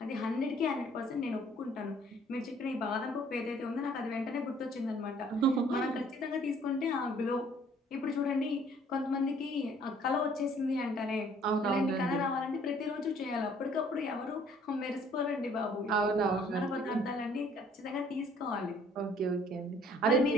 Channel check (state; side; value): normal; both; correlation 0.58